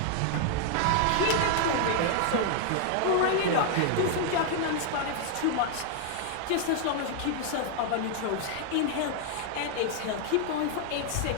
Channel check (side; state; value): both; different; correlation 0.00